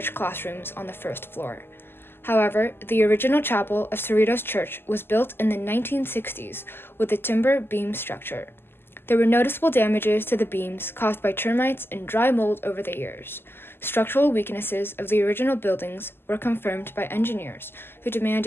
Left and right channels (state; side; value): late; right; 0.11 ms